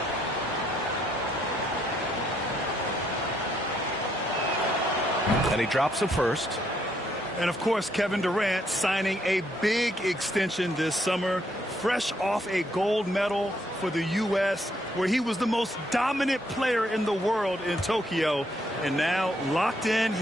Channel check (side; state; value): both; normal; correlation 0.72